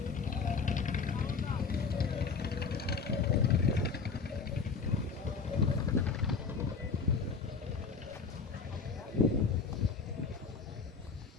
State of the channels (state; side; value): quieter; right; 5.1 dB